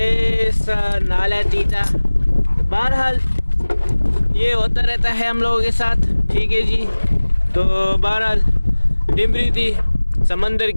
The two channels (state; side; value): inverted; both; correlation -1.00